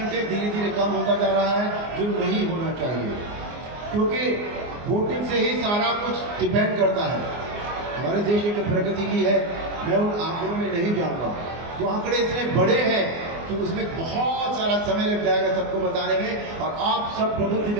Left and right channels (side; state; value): left; late; 24 ms